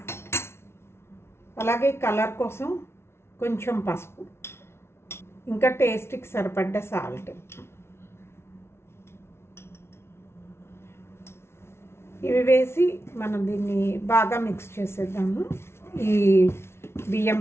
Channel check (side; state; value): right; late; 0.12 ms